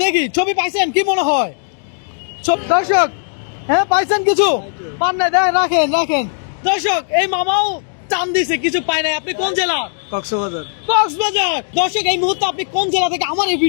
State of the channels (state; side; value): silent; right; digital silence